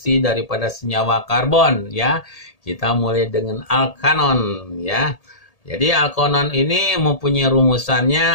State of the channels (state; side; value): late; right; 1.8 ms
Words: daripada senyawa karbon, ya. Kita mulai dengan alkanon, ya. Jadi alkanon ini mempunyai